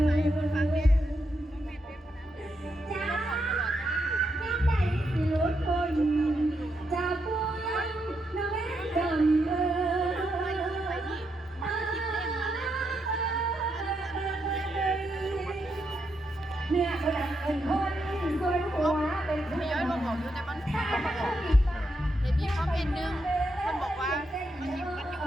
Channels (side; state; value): both; normal; correlation 0.81